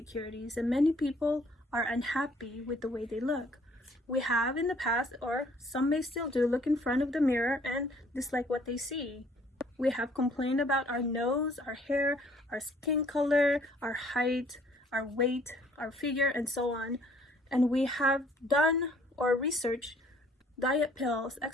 and many people are unhappy with the way they look. We have in the past, or some may still do, look in front of the mirror and dislike what they see. We have complained about our nose, our hair, our skin color, our height, our weight, our figure, and so on. And we have done or researched diet pills,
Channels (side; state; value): both; normal; correlation 0.60